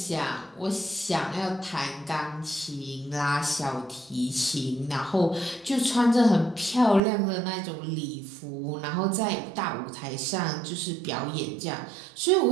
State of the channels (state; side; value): drops out; left; at 7.0 s